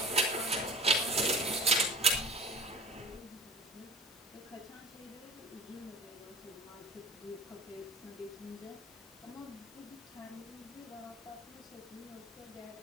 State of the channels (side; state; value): both; normal; correlation 0.42